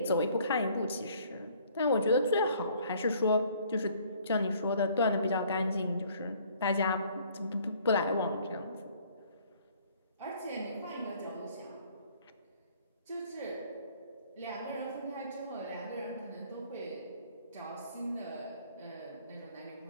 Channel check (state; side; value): inverted; both; correlation -0.59